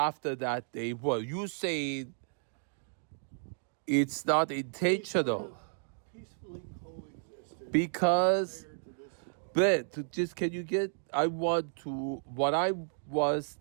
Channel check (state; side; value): silent; left; digital silence